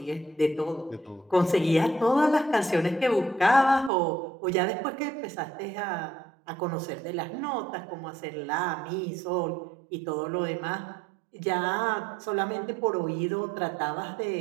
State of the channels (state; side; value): drops out; left; at 3.9 s